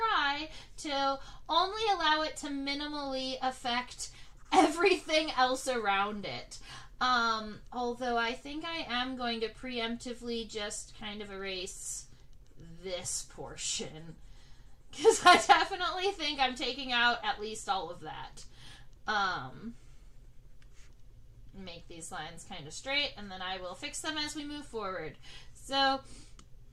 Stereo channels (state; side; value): identical; both; correlation 1.00